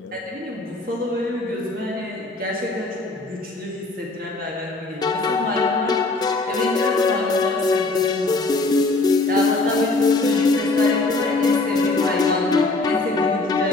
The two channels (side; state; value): right; quieter; 3.2 dB